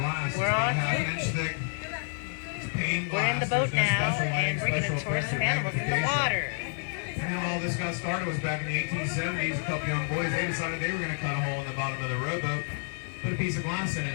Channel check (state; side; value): silent; right; 59 dB below the other